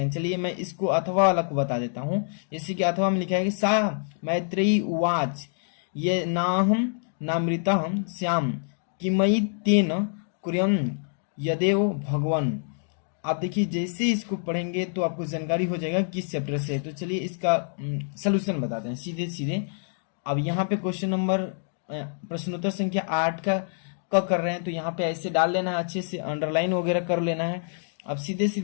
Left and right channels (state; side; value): silent; right; digital silence